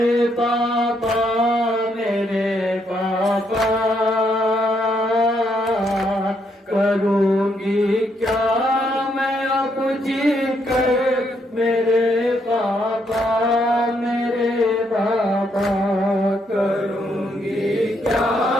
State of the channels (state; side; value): normal; both; correlation 0.75